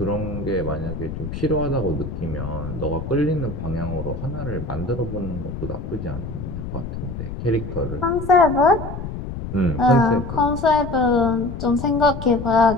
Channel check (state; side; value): noise; left; rumble, 7 dB below the sound